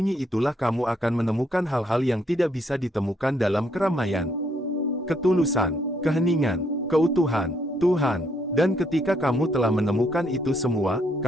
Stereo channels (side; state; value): both; normal; correlation 0.71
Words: itulah kamu akan menemukan hal-hal yang tidak bisa ditemukan dalam keramaian. Ketulusan, keheningan, keutuhan, Tuhan. Dan ketika kamu telah menemukan itu semua,